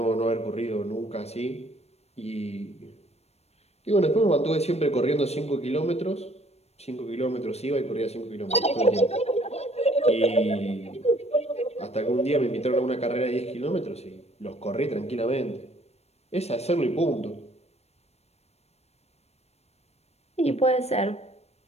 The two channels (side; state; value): right; late; 0.31 ms